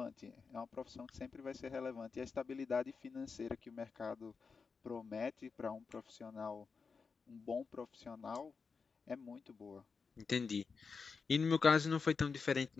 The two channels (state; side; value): quieter; right; 5.1 dB